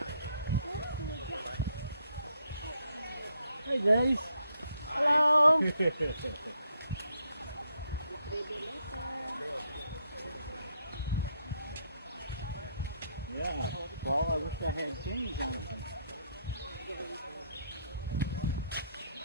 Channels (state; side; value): inverted; both; correlation -0.74